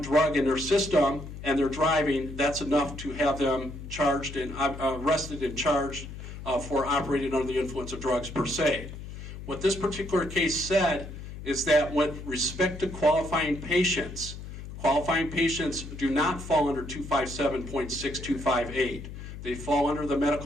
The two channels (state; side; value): noise; left; hum, 11 dB below the sound